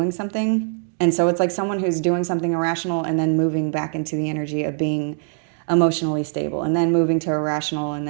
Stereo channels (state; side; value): silent; left; 56 dB below the other